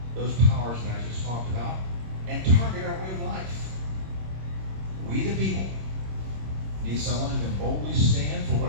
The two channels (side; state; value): left; late; 26 ms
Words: those powers that I just talked about and target our way of life. We the people need someone who can boldly stand for